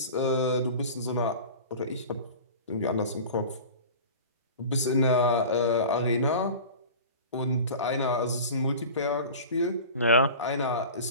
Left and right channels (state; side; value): inverted; both; correlation -0.36